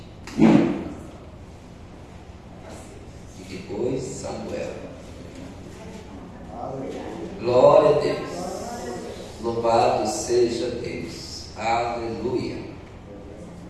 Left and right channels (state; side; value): identical; both; correlation 1.00